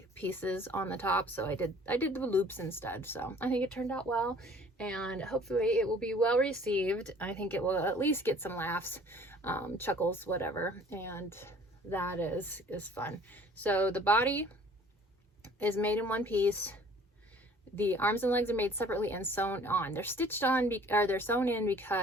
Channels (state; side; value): normal; both; correlation 0.52